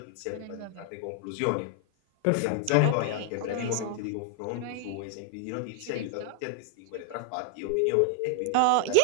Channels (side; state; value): both; different; correlation -0.01